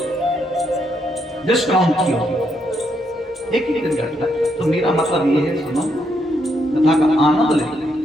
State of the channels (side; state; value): both; normal; correlation 0.77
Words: डिस्काउंट किया, एक ही दिन घटता है। तो मेरा मतलब ये है, सुनो, कथा का आनंद ले।